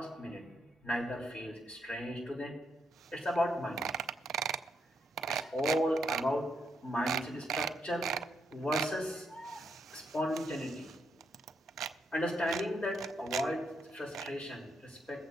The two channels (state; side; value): normal; both; correlation 0.78